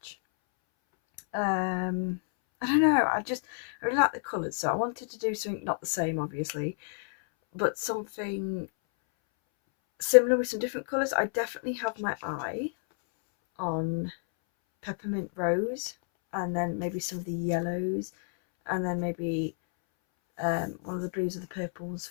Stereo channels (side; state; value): right; silent; 58 dB below the other